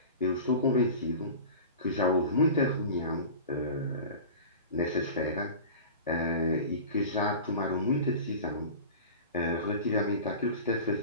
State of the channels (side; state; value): both; inverted; correlation -0.35